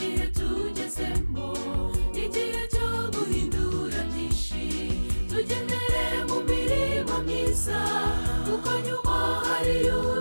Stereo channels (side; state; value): both; inverted; correlation -1.00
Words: tugezemo igihe cyo guhindura byinshi tugendere mu mirimo myiza kuko nyuma hari